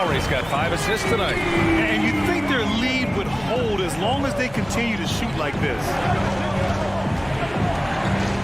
got 5 assists tonight. And you think their lead would hold as long as they continue to shoot like this.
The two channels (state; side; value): noise; left; hum, 19 dB below the sound